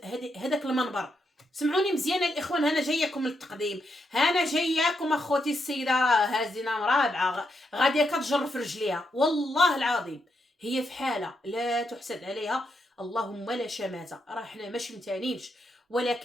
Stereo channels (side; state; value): both; normal; correlation 0.81